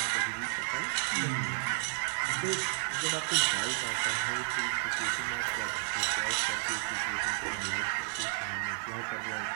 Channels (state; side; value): silent; left; 56 dB below the other